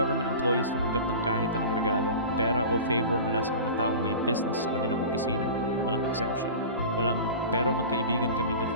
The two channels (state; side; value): inverted; both; correlation -0.34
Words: employees tumanggap ng kahit anong regalo, pera o favor mula sa mga taong may business sa kanilang opisina. Walang exemption. Walang pero magkaibigan kami